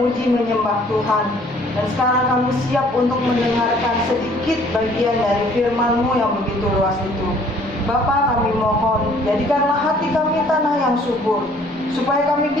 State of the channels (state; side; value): normal; both; correlation 0.57